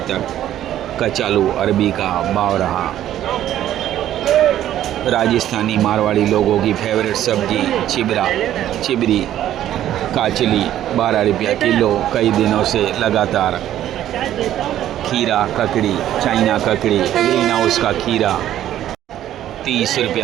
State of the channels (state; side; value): quieter; left; 12.1 dB